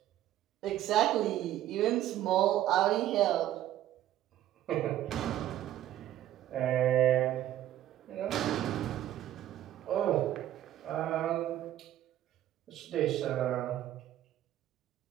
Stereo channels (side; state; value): left; quieter; 12.8 dB